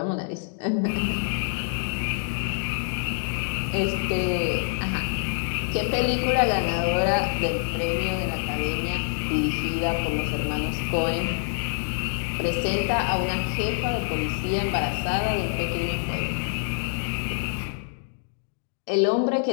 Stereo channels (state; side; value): silent; right; 61 dB below the other